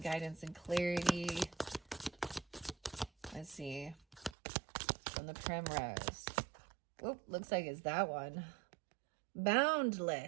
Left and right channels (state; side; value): drops out; left; at 4.4 s